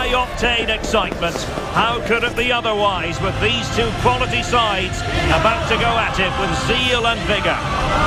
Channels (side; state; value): both; identical; correlation 1.00